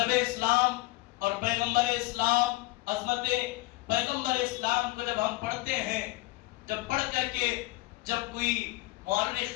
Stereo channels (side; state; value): right; quieter; 20.6 dB